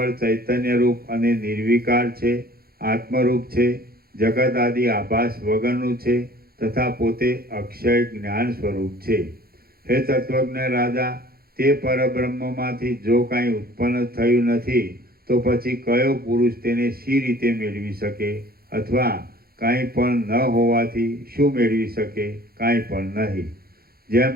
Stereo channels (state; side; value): late; left; 0.44 ms